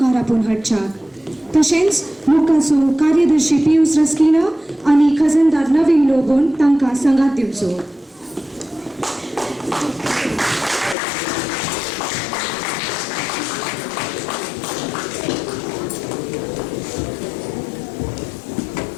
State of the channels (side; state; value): right; drops out; at 11.0 s